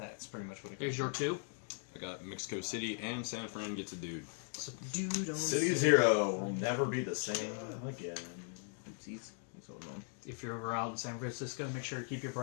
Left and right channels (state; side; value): silent; right; 52 dB below the other